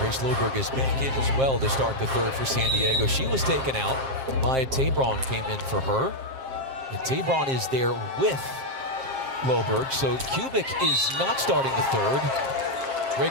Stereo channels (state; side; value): late; left; 7.6 ms